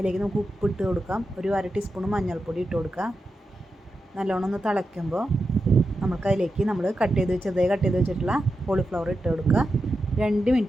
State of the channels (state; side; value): normal; both; correlation 0.89